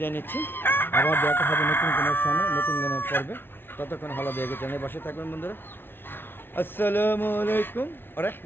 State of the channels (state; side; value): late; right; 0.11 ms